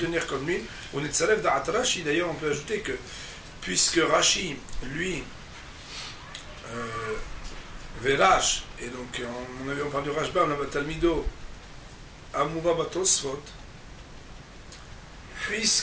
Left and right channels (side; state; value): both; identical; correlation 1.00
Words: comme lui. On est de Salef d'At Rashi, d'ailleurs on peut ajouter que, puisque Rashi, lui, Verash, et donc on parle du Rashba, on a Talmido, Amouva Batosfot,